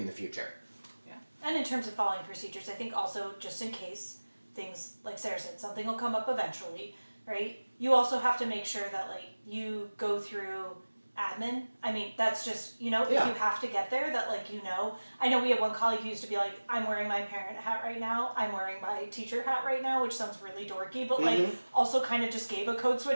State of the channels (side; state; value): both; inverted; correlation -1.00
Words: the future. Yeah. And in terms of following procedures, I think also just in case things, like Sarah said, something will come up eventually, right? You also have to make sure that, like, you go through admin. I mean, that's just, you know, if you have to get there, that, like, you know. I know we had one colleague who used to be like, I'm wearing my parent hat right now, I'm wearing my teacher hat right now, which sounds really dorky, but like also kind of just gave a code